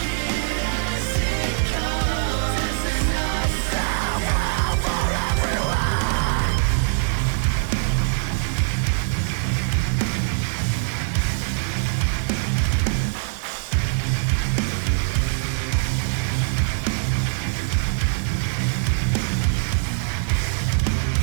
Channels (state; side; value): silent; left; digital silence